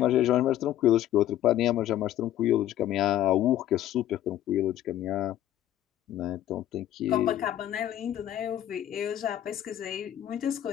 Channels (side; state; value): right; quieter; 12.4 dB